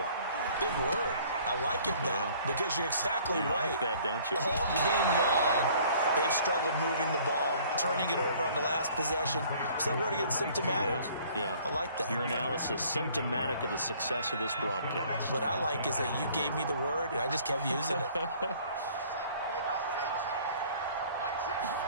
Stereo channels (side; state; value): both; inverted; correlation -0.55